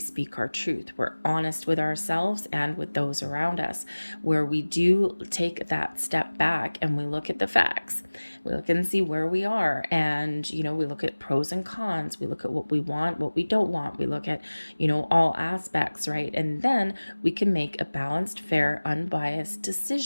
our truth. We're honest with ourselves and with those around us, where we do take that step back and we look at the facts. We look and see where we are, and we look at pros and cons. We look at what we want, what we don't want. We look at all aspects, right? And then we can make a balanced, fair, unbiased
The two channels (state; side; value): inverted; both; correlation -1.00